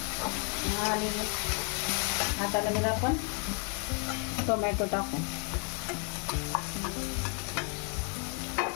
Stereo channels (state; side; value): quieter; right; 39.6 dB